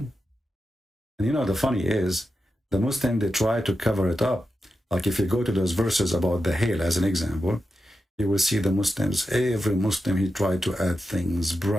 And you know, the funny is, the Muslim, they try to cover it up. Like if you go to those verses about the hail as an example, you will see the Muslims, every Muslim, he tried to add things,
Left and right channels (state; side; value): normal; both; correlation 0.89